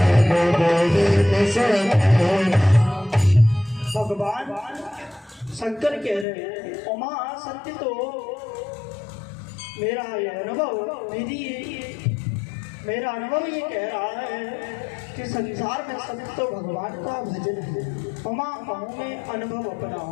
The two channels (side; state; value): right; drops out; at 6.2 s